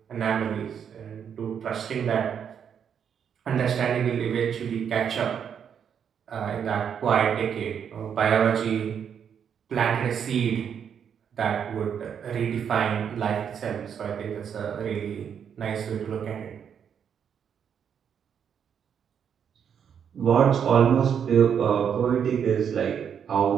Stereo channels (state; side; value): quieter; left; 7.9 dB